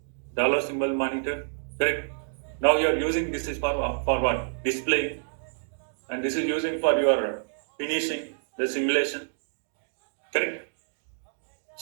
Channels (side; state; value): left; silent; digital silence